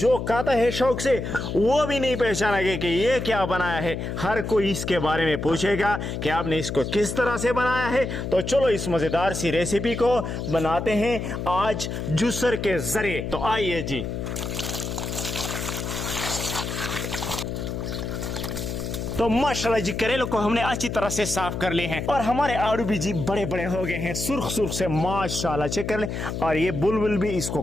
खाता है शौक से वो भी नहीं पहचानेगा कि ये क्या बनाया है। हर कोई इसके बारे में पूछेगा कि आपने इसको किस तरह से बनाया है। तो चलो इस मजेदार सी रेसिपी को बनाते हैं आज जूसर के जरिए। तो आइए जी। तो माशाल्लाह जी करेलों को हमने अच्छी तरह से साफ कर लिए हैं और हमारे आलू भी जी बड़े बड़े हो गए हैं, सुर्ख सुर्ख से माशाल्लाह। चेक कर ले। और ये बुलबुल भी इसको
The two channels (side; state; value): left; noise; hum, 4 dB below the sound